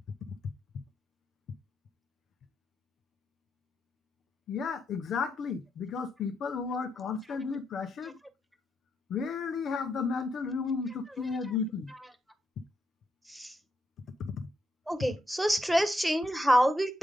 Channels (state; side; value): normal; both; correlation 0.81